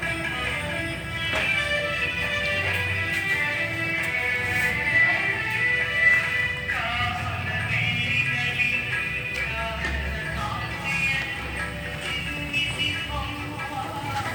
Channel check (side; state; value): both; identical; correlation 1.00